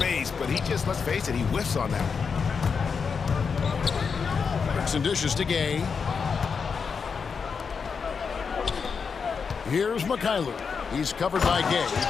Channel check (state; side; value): quieter; right; 5.7 dB